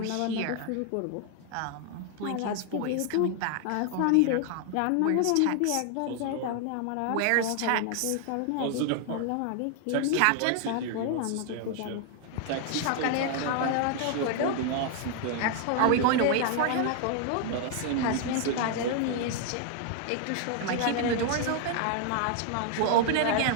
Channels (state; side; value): different; both; correlation 0.00